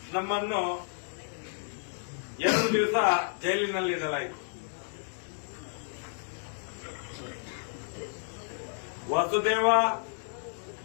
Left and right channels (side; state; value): right; silent; digital silence